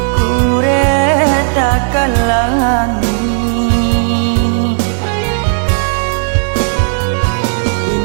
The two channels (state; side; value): silent; left; 70 dB below the other